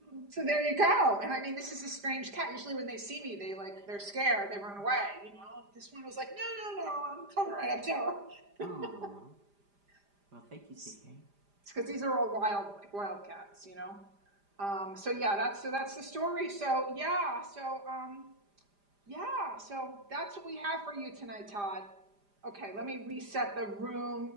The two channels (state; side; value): late; left; 5.0 ms